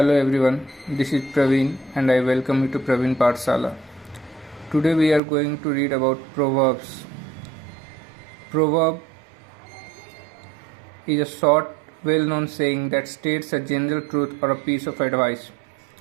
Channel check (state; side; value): drops out; left; at 5.2 s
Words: everyone, this is Praveen and I welcome you to Praveen Pathsala. Today we are going to read about Proverbs. Proverb is a short, well-known saying that states a general truth or a piece of advice.